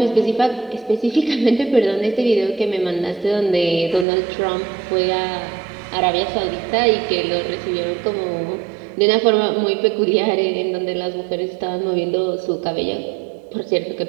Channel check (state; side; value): drops out; left; at 4.0 s